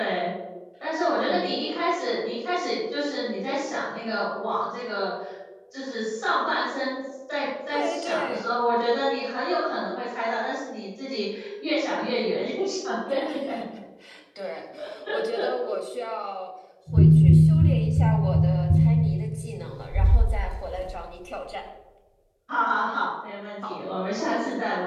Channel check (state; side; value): identical; both; correlation 1.00